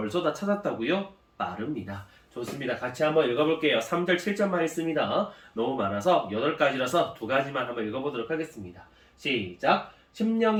다 찾았다고요? 빠릅니다. 좋습니다. 같이 한번 읽어볼게요. 3절, 7절만 있습니다. 너무 많아서 8가지라서 2가지만 한번 읽어보도록 하겠습니다. 시작!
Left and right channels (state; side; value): identical; both; correlation 1.00